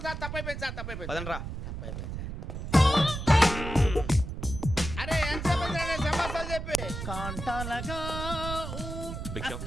సార్ తప్పైపోయింది సార్, తప్పైపోయింది. పదండ్రా. తప్పైపోయింది సార్. అరే ఎంతసేపు సమాసాలు చెప్పి కాంటాలగా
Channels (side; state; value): right; noise; rumble, 6 dB below the sound